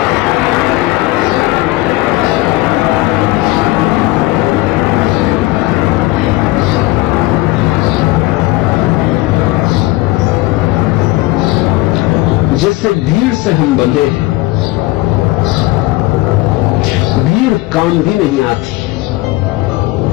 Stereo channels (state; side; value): quieter; right; 19.2 dB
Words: जैसे भीड़ से हम बंधे हैं, भीड़ काम भी नहीं आती,